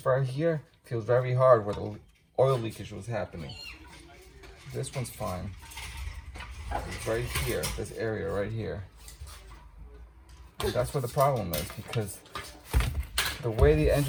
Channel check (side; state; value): both; identical; correlation 1.00